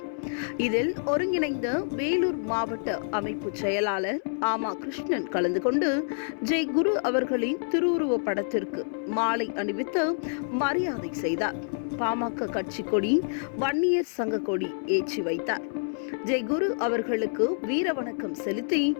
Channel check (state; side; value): silent; right; 60 dB below the other